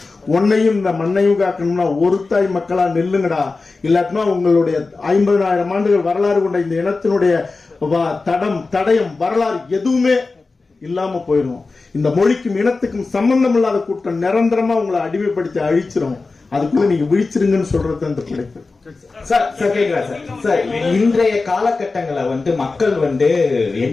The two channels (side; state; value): right; quieter; 3.9 dB